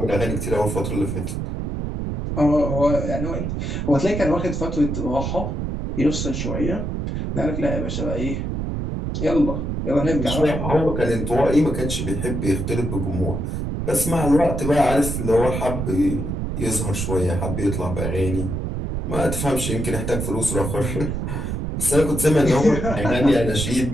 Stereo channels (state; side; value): noise; right; rumble, 3 dB below the sound